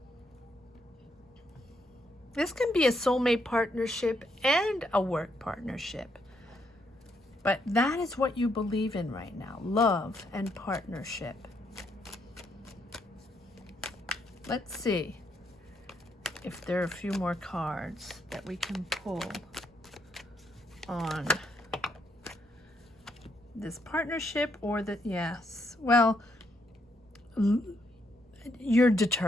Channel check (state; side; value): normal; both; correlation 0.75